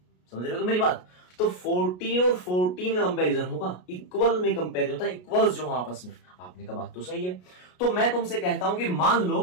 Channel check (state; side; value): late; right; 33 ms